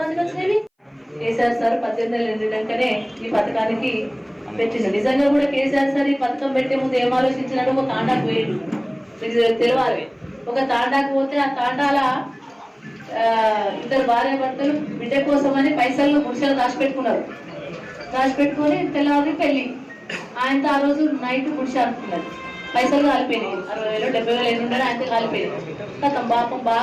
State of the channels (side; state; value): both; identical; correlation 1.00